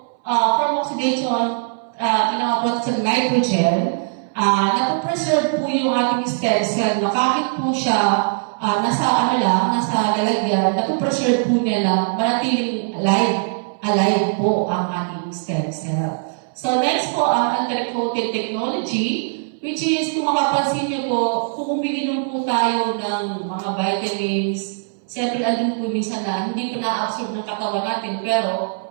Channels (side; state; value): left; silent; 63 dB below the other